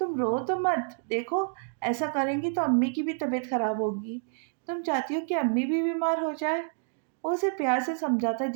रो तो मत। देखो, ऐसा करेंगी तो अम्मी की भी तबीयत खराब होगी। तुम चाहती हो कि अम्मी भी बीमार हो जाए? वो उसे प्यार से समझाता है,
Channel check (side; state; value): left; silent; 59 dB below the other